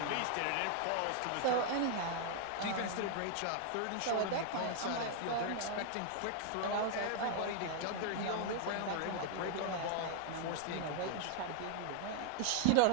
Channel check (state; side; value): different; both; correlation 0.00